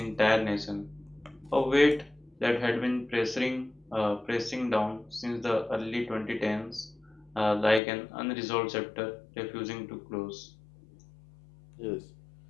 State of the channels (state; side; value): drops out; right; at 7.8 s